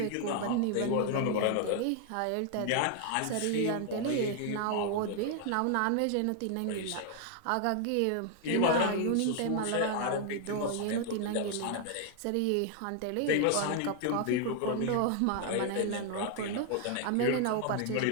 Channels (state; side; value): different; both; correlation 0.00